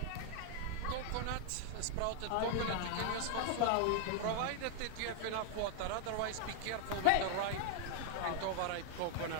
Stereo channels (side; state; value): both; different; correlation 0.00